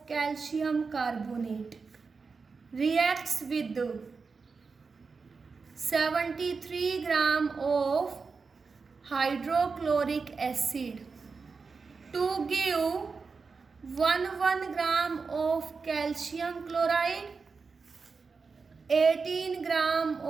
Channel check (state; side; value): quieter; left; 4.8 dB